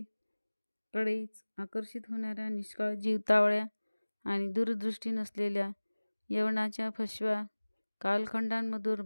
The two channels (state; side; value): inverted; both; correlation -1.00